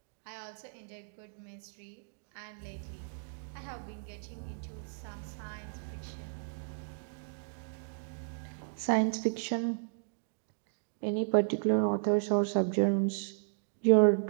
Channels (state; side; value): silent; left; digital silence